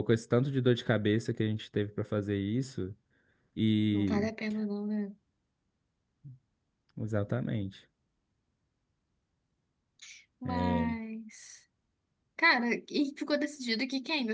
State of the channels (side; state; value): both; identical; correlation 1.00